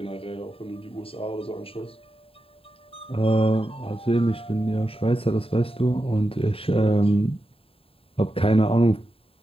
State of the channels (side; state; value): right; late; 0.27 ms